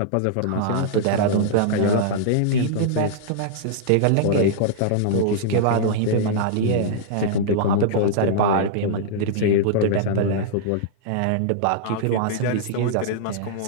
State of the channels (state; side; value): different; both; correlation -0.02